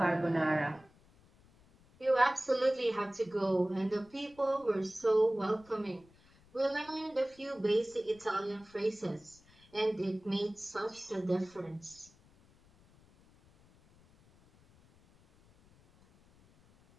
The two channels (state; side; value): noise; left; rumble, 28 dB below the sound